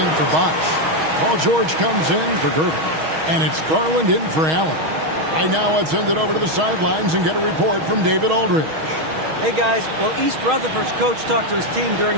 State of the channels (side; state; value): left; late; 6.3 ms